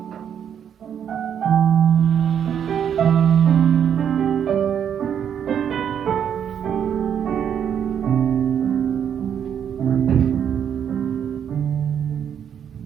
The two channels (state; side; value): quieter; left; 8.6 dB